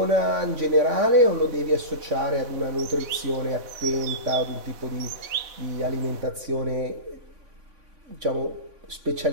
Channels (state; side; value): late; left; 3.5 ms